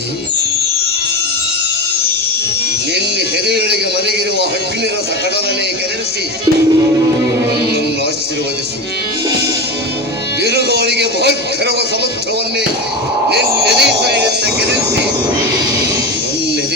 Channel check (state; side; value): normal; both; correlation 0.22